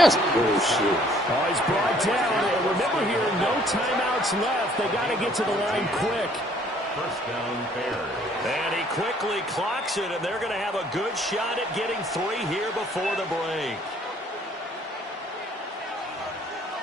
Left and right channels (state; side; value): normal; both; correlation 0.60